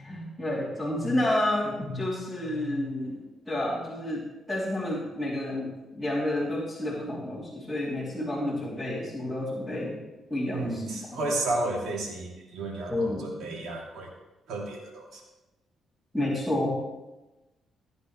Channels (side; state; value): both; normal; correlation 0.81